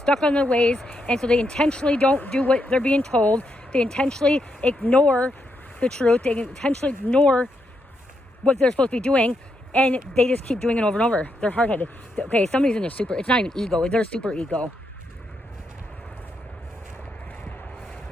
on their ways, and so they intentionally don't do what they're being told. They intentionally ignore the truth. They intentionally ignore what they're supposed to be doing, and they just keep doing it over and over. They're hard-headed. Okay, somebody's in their super, it's not even ego, they're super ego.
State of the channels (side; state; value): both; normal; correlation 0.81